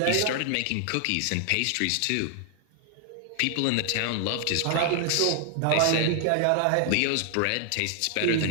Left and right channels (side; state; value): both; different; correlation 0.00